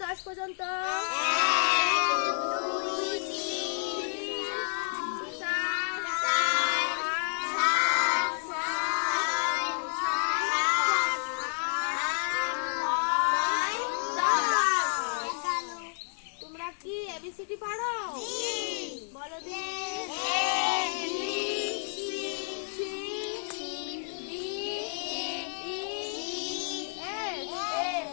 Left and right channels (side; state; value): right; silent; digital silence